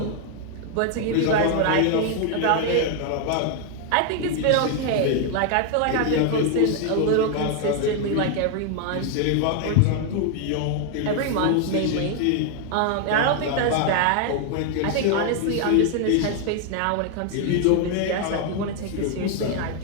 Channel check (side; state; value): both; different; correlation 0.00